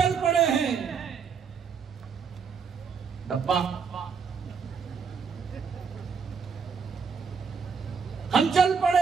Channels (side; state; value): left; quieter; 6.0 dB